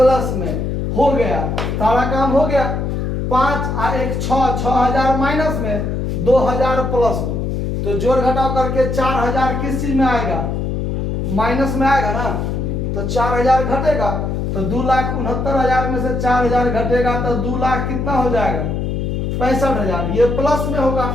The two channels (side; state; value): left; noise; hum, 1 dB below the sound